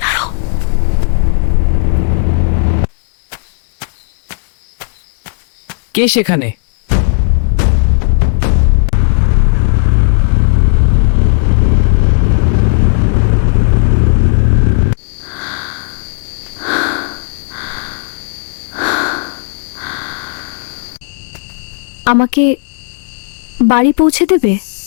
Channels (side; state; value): right; silent; digital silence